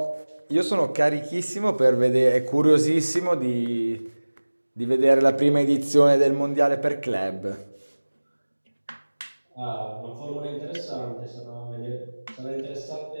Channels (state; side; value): inverted; both; correlation -1.00